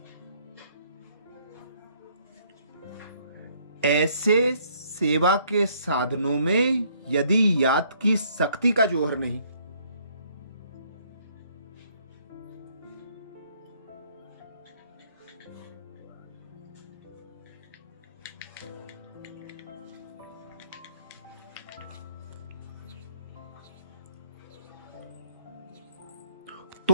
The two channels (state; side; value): inverted; both; correlation -0.65